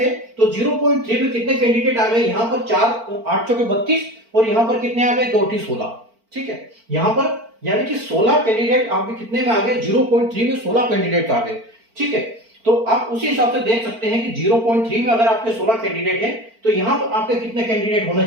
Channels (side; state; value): left; late; 4.4 ms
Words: तो 0.3 में कितने कैंडिडेट आ गए, यहाँ पर 4 8 चौके 32 और यहाँ पर कितने आ गए, 2 8 16। ठीक है, यहाँ पर यानी कि 16 कैंडिडेट आपके कितने में आ गए, 0.3 में 16 कैंडिडेट आ गए। ठीक है, तो आप उसी हिसाब से देख सकते हैं कि 0.3 में अगर आपके 16 कैंडिडेट हैं तो यहाँ पर आपके कितने कैंडिडेट होना